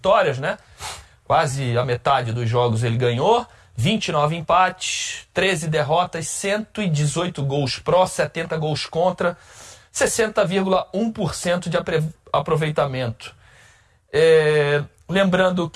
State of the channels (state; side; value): identical; both; correlation 1.00